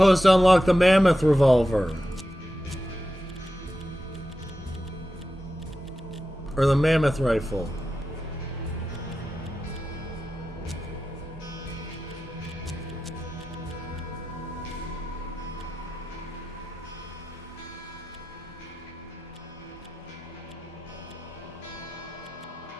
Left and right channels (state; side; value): normal; both; correlation 0.92